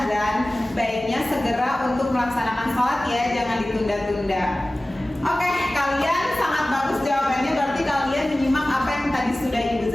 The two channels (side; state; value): both; normal; correlation 0.97